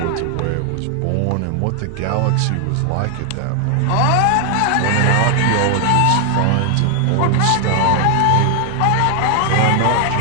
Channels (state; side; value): different; both; correlation 0.00